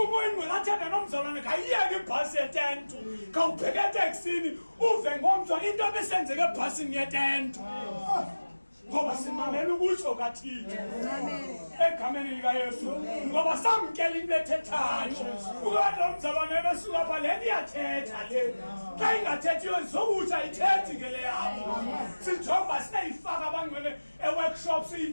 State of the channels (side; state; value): both; inverted; correlation -1.00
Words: ingcwele athethe nomzalwane kayiyeke ibhasi yetentu kawubheke eteksini uve ngomzwa into ebisenzeke ebhasini yetentu ngoba simamela ukutsho kaThixo egameni likaYesu ngoba samkela into ethethayo. Ukade umzalwane besuka pha le iyathetha le xa ingathethiyo zokutsha ithethi ngele yabo. Sijonga sineyifaka abangcwele eworkshop